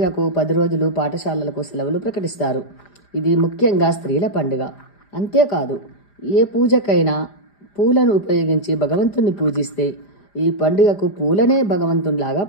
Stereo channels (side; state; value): right; late; 5.0 ms